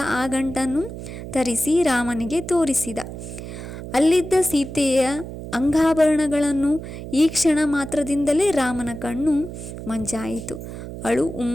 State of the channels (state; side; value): noise; right; hum, 10 dB below the sound